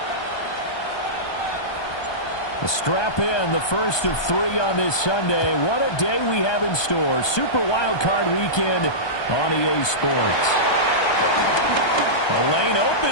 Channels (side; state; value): right; late; 1.2 ms